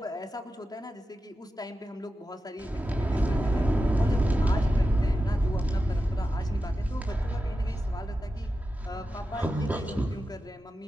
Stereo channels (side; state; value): both; normal; correlation 0.92